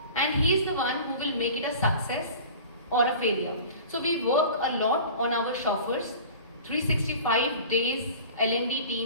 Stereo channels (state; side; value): inverted; both; correlation -0.40